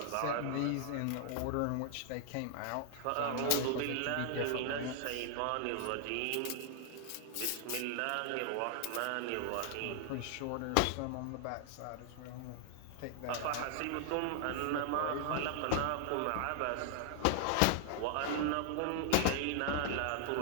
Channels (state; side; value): different; both; correlation 0.00